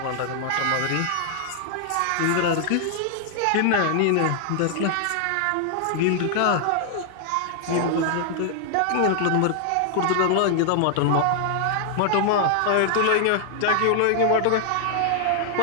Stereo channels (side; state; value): both; different; correlation 0.00